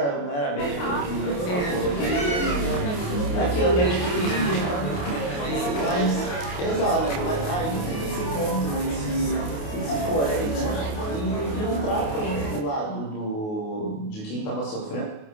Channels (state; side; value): late; right; 28 ms